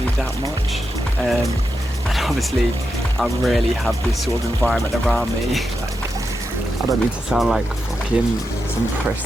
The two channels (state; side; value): normal; both; correlation 0.87